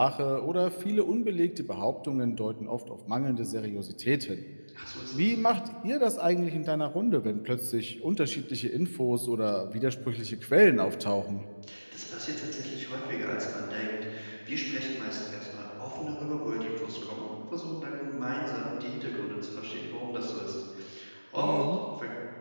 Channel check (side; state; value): both; inverted; correlation -1.00